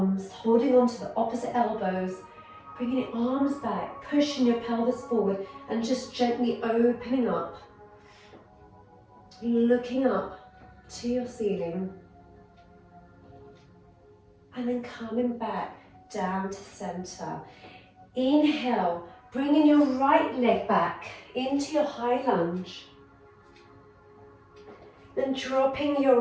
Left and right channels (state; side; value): identical; both; correlation 1.00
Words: holding on to the opposite elbows, bringing your arms back, pushing your pelvis forward, and just gently opening up, looking up to your ceiling. and then coming back down to center. Inhale, bringing your right leg back into your high lunge. Then dropping your